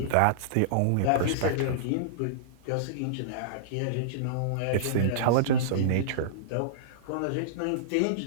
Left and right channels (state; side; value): different; both; correlation -0.03